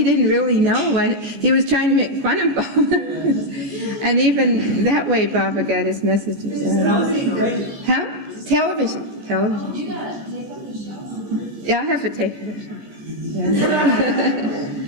didn't really know. He was trying to make fun of Baba. And even that way Baba got his messages out. Huh? Television. You gotta take up the show. Yeah, I have to take it. Yeah.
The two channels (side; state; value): left; late; 14 ms